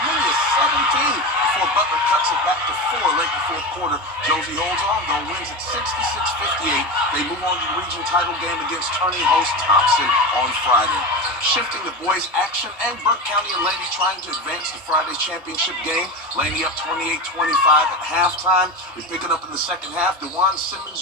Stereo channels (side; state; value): both; normal; correlation 0.23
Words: many as 17 before Butler cuts it back to 4 late in the fourth quarter. Josie holds on, though, wins at 66-58. They move on to the region title game against tourney host Thompson on Friday. Shifting the boys' action, and Burke County and Laney trying to advance to Friday's championship game. Laney up 28-25 at halftime. We pick it up in the second half. DeJuan Simmons